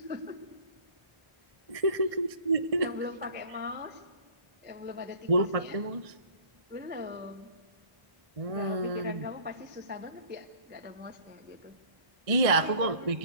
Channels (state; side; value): late; left; 1.6 ms